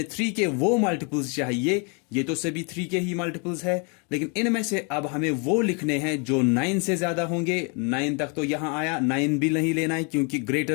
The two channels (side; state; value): right; quieter; 34.8 dB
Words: 3 के वो मल्टीपल्स चाहिए। ये तो सभी 3 के ही मल्टीपल्स है, लेकिन इनमें से अब हमें वो लिखने हैं जो 9 से ज्यादा होंगे। 9 तक तो यहां आया, 9 भी नहीं लेना है क्योंकि